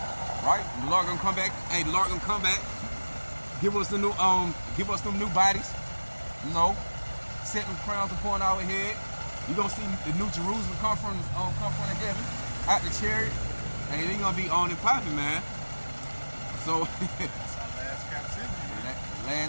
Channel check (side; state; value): both; inverted; correlation -1.00